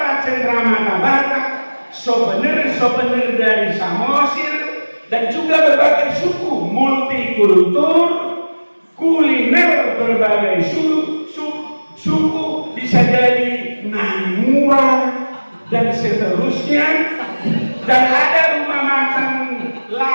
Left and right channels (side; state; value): both; inverted; correlation -1.00